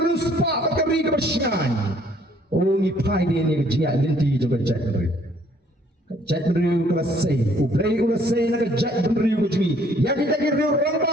ke ri ke bersyai, oh ni pai dia ni ke jingat linti juga Jack Benriu, Jack Benriu kelas say, ublay kelas say nak ke Jack Benriu ke jingi, yang kita kira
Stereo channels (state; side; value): normal; both; correlation 0.62